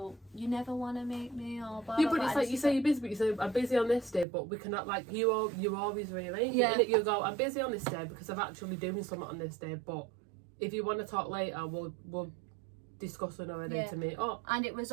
you never want to meet me, or blah, yeah, blah, but it's blah. like, you say you're busy, but you say, I'm busy on this day, but we cannot, like, you always rearrange it. You go, I'm busy on this day because I'm actually doing something on this day, but if you want to talk later, we'll discuss another day to meet up. And it was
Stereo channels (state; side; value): drops out; left; at 4.2 s